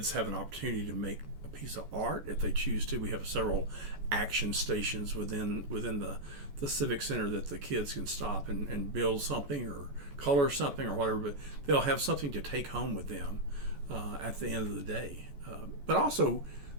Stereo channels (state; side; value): late; left; 14 ms